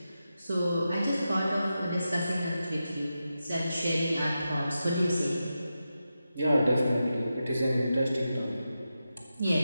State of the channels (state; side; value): inverted; both; correlation -0.90